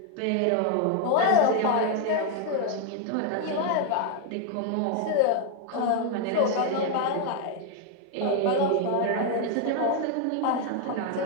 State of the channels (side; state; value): both; different; correlation 0.01